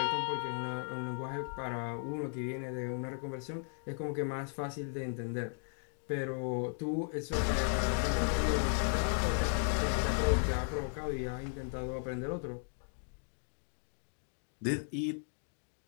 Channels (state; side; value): silent; right; 54 dB below the other